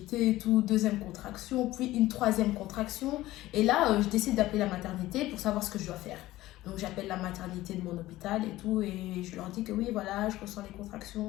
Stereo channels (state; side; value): quieter; right; 16.6 dB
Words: et tout. Deuxième contraction, puis une troisième contraction. Et là, je décide d'appeler la maternité pour savoir ce que je dois faire. Donc j'appelle la maternité de mon hôpital et tout, et je leur dis que oui, voilà, je ressens les